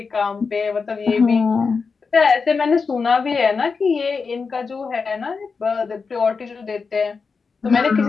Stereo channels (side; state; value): right; quieter; 4.9 dB